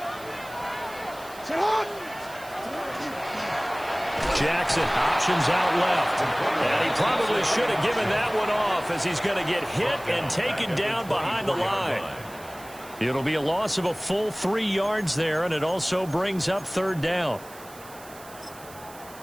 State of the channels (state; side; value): noise; right; hiss, 19 dB below the sound